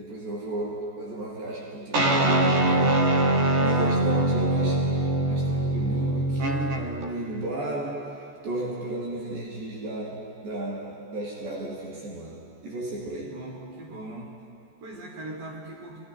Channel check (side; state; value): left; late; 14 ms